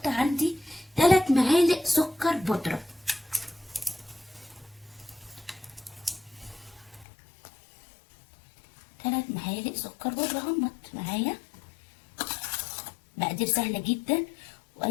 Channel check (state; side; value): drops out; right; at 7.1 s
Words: عندي 3 معالق سكر بودرة، 3 معالق سكر بودرة همت معايا. مقادير سهلة جدا،